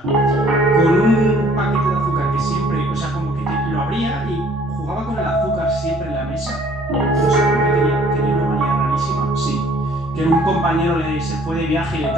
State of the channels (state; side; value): normal; both; correlation 0.57